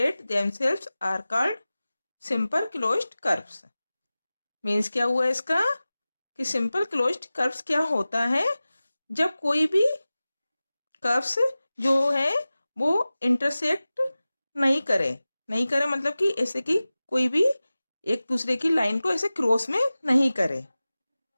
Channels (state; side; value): inverted; both; correlation -0.97